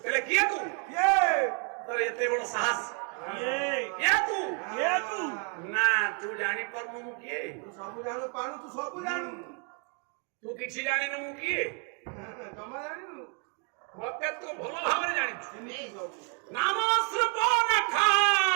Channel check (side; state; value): left; quieter; 35.6 dB